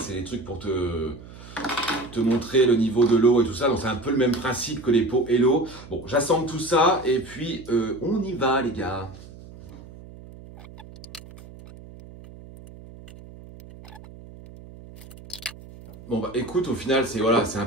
des trucs pour te montrer le niveau de l'eau et tout ça. Donc c'est un peu le même principe que les pots Hello. Bon, j'assemble tout ça et puis on y va les gars. Bon bah écoute, au final c'est voilà, c'est un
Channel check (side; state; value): right; noise; hum, 18 dB below the sound